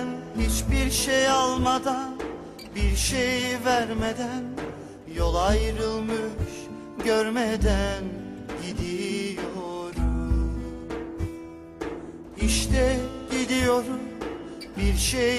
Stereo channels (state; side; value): identical; both; correlation 1.00